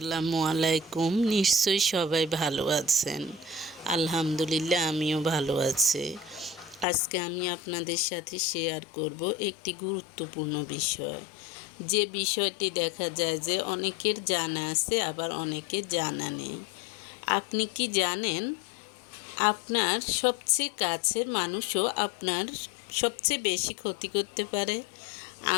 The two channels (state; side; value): drops out; right; at 6.9 s